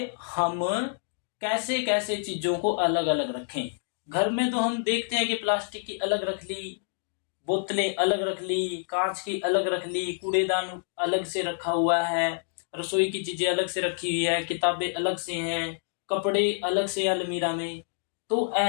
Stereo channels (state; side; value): silent; right; digital silence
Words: हम कैसे कैसे चीजों को अलग अलग रखें। घर में तो हम देखते हैं कि प्लास्टिक की अलग रख ली, बोतलें अलग रख ली, कांच की अलग रख ली, कूड़ेदान अलग से रखा हुआ है, रसोई की चीजें अलग से रखी हुई है, किताबें अलग से हैं, कपड़े अलग से अलमीरा में। तो